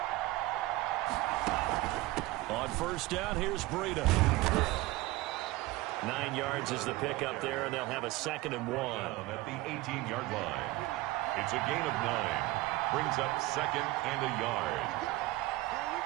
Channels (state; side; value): quieter; left; 19.0 dB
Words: On first down, here's Breida. 9 yards is the pickup there, and they'll have a 2nd and 1. At the 18-yard line. It's a gain of 9. Brings up 2nd and a yard.